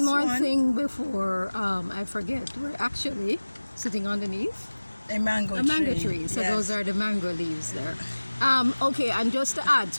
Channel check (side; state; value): both; inverted; correlation -1.00